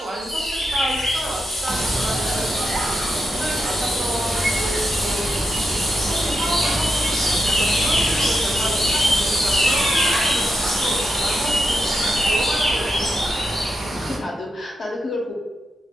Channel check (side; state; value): both; normal; correlation 0.85